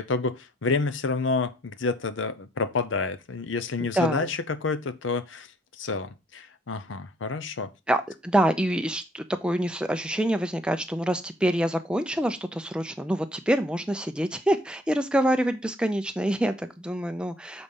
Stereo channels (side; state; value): both; normal; correlation 0.63